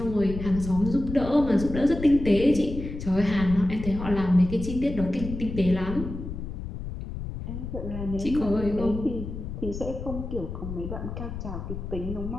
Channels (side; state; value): left; noise; rumble, 7 dB below the sound